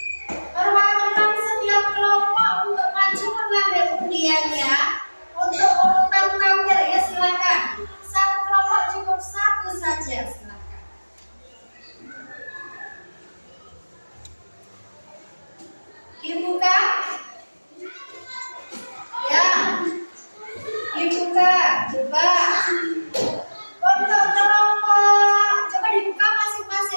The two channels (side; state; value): both; inverted; correlation -1.00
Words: Perwakilan setiap kelompok untuk maju mengambil undiannya. Untuk urutan tampil ya silakan. Satu kelompok cukup 1 saja, silakan. Dibuka. Ya, dibuka, coba. Untuk kelompok, coba dibuka